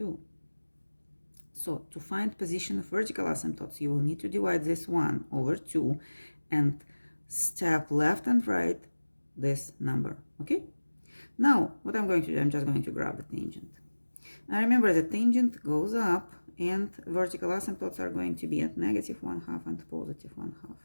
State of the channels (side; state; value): both; inverted; correlation -1.00